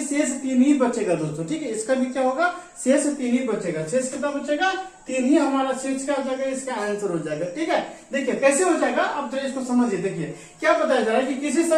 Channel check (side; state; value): both; identical; correlation 1.00